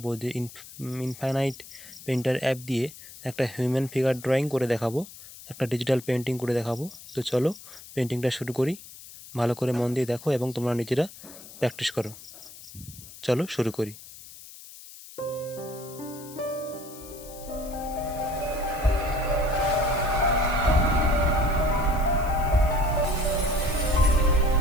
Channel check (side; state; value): left; noise; hiss, 17 dB below the sound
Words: যে ইনফাইনাইট পেন্টার অ্যাপ দিয়ে একটা হিউম্যান ফিগার ড্রয়িং করে দেখাবো, একটা ডিজিটাল পেন্টিং করে দেখাবো। তো চলো পেন্টিংটা শুরু করি। ভালো করে মন দিয়ে দেখো এবং তোমরা নিজেরা প্র্যাকটিস করো। চলো শুরু করি।